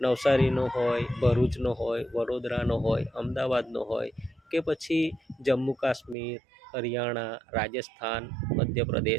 નવસારીનો હોય, ભરૂચનો હોય, વડોદરાનો હોય, અમદાવાદનો હોય કે પછી જમ્મુ કાશ્મીર, હરિયાણા, રાજસ્થાન,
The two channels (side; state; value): left; drops out; at 6.2 s